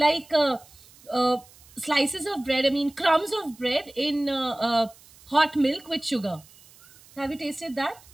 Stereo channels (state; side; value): noise; right; hiss, 25 dB below the sound